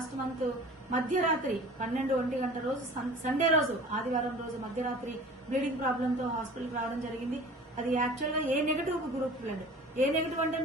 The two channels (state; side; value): normal; both; correlation 0.43